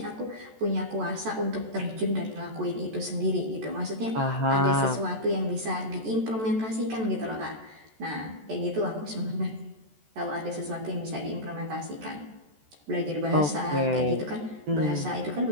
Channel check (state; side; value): late; left; 14 ms